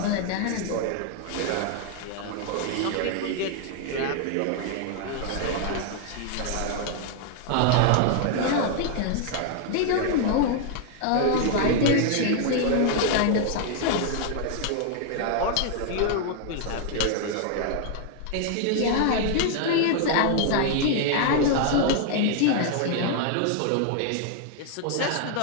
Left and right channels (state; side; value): different; both; correlation 0.00